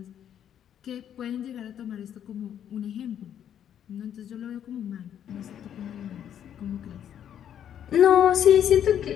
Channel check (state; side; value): quieter; right; 9.7 dB